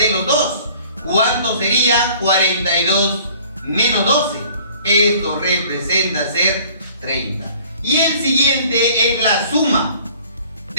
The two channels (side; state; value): both; inverted; correlation -0.52